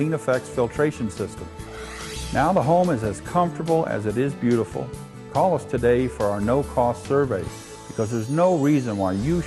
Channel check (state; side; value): identical; both; correlation 1.00